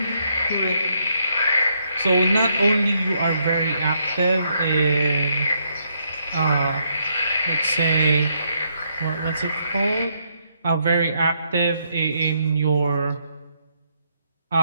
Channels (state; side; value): inverted; both; correlation -0.75